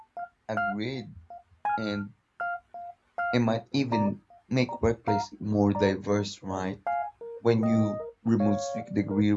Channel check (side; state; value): both; identical; correlation 1.00